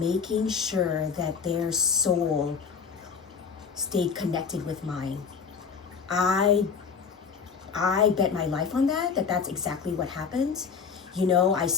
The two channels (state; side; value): quieter; right; 6.0 dB